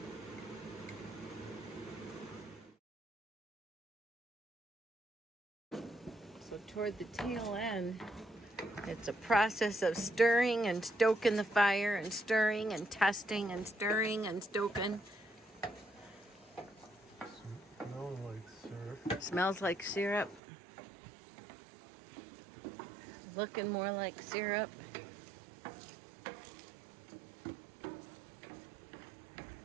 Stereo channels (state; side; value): drops out; left; at 20.4 s